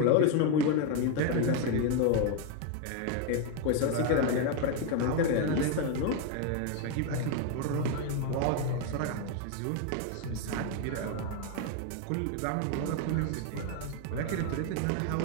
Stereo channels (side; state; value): both; different; correlation 0.01